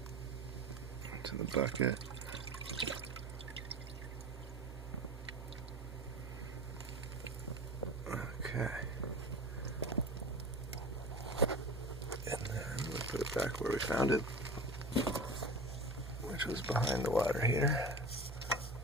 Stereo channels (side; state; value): both; normal; correlation 0.34